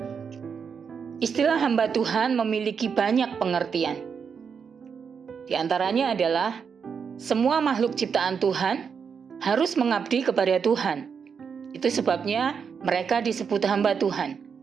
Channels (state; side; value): quieter; left; 6.4 dB